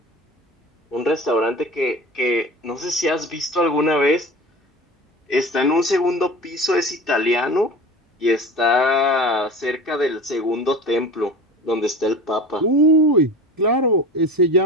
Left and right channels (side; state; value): both; normal; correlation 0.35